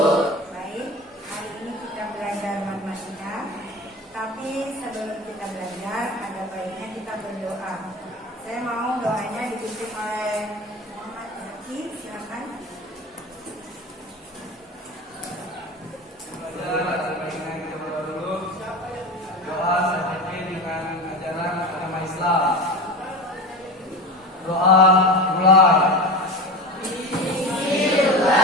Baik, hari ini kita belajar matematika. Tapi sebelum kita belajar, ada baiknya kita berdoa. Saya mau doanya dipimpin oleh Muhammad Zaki, silakan. Doa seperti dengan ajaran agama Islam. Doa mulai.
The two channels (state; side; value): normal; both; correlation 0.29